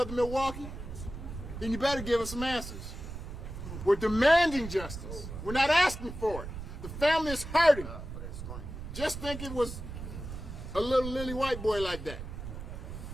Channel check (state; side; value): noise; right; rumble, 9 dB below the sound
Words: Milwaukee? Then you better give us some answers. We're demanding justice. We're not asking for it. The family is hurting. Just think it was a little lily white boy like that.